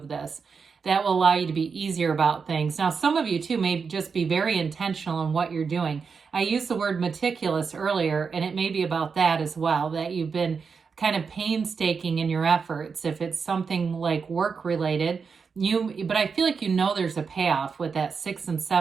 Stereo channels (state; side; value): quieter; left; 5.5 dB